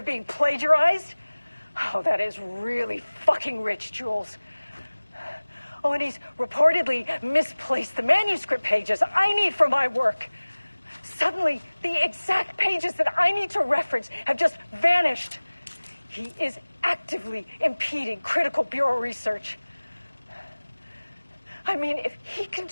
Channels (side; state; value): both; inverted; correlation -1.00